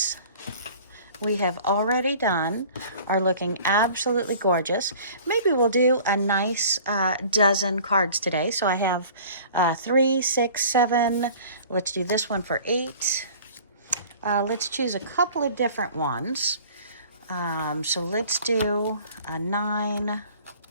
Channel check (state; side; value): inverted; both; correlation -0.47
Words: we have already done are looking absolutely gorgeous. Maybe we'll do a nice dozen cards today. So I have 3, 6, 7. Let's do this one for 8. Let's choose a couple of different ones. So let's do a 9.